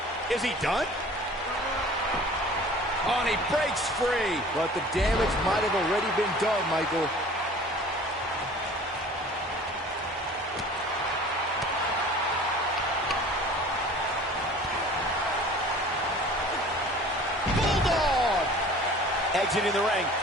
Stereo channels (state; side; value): normal; both; correlation 0.45